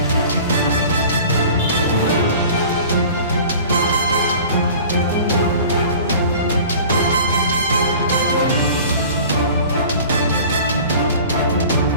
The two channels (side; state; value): both; inverted; correlation -0.43